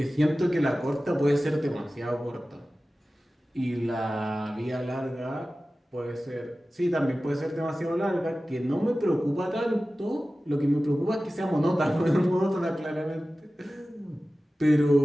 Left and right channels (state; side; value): normal; both; correlation 0.96